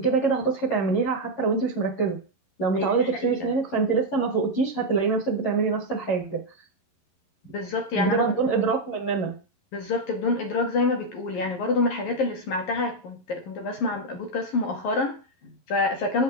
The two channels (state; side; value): late; right; 11 ms